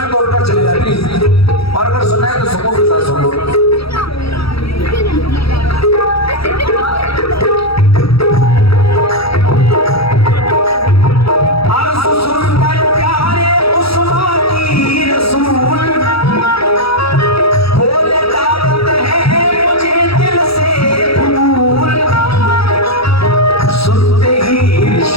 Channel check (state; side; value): late; right; 0.76 ms